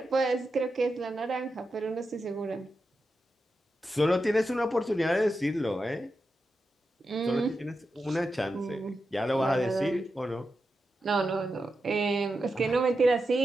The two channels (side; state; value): both; normal; correlation 0.89